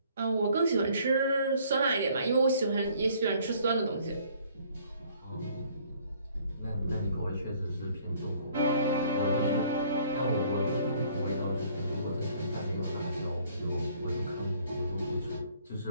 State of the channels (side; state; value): both; inverted; correlation -0.60